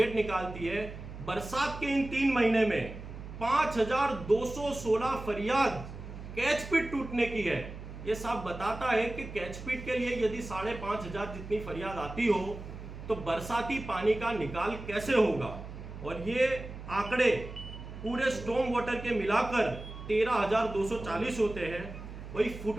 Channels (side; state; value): right; noise; hum, 11 dB below the sound